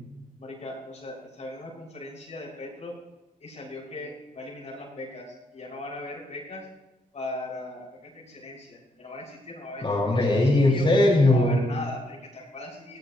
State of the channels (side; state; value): both; normal; correlation 0.76